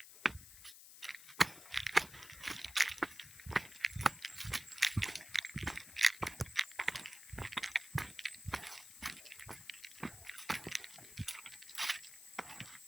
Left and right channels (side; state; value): left; noise; hiss, 16 dB below the sound